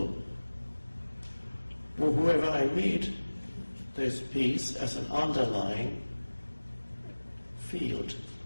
Or whoever I meet, there's peace as an underlying field.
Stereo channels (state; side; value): inverted; both; correlation -1.00